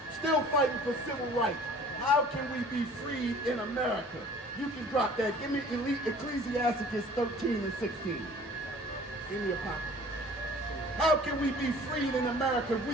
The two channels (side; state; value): both; normal; correlation 0.49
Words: Still fighting for civil rights. How can we be freed in America? You can drop that. Give me Ecclesiastes 13 and 16. Give me a copy. How can we be freed in America if